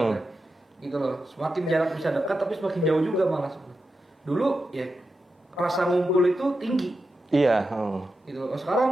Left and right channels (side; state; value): both; normal; correlation 0.89